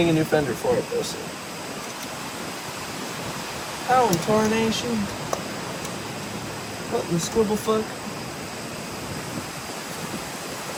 a new fender for it though soon. How in tarnation? What in the scribble fuck?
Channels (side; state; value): both; identical; correlation 1.00